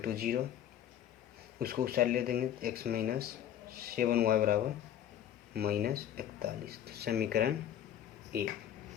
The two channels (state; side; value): quieter; right; 10.5 dB